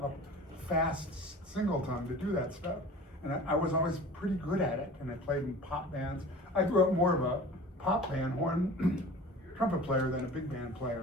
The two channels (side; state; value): both; normal; correlation 0.41